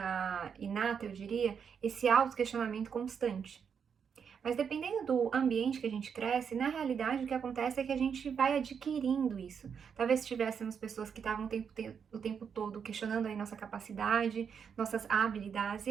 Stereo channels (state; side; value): quieter; left; 6.9 dB